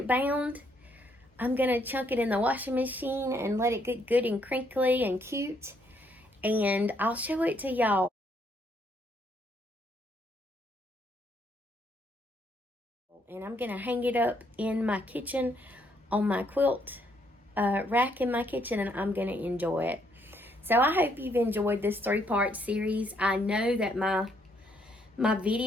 bound, I'm going to chunk it in the washing machine and let it get good and crinkly and cute. And I'll show it to y'all. And I'm going to hang it up in my kitchen on my quilt rack in my kitchen, and I'm going to enjoy it. So I hope you've enjoyed this 3-part series. I know that my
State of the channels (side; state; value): both; normal; correlation 0.71